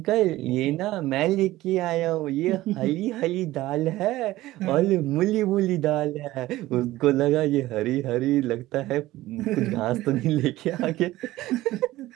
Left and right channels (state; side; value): quieter; left; 16.7 dB